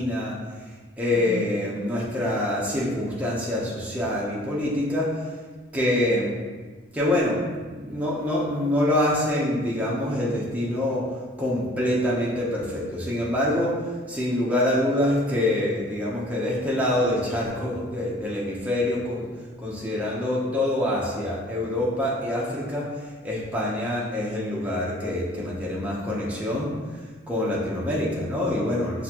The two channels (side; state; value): both; normal; correlation 0.52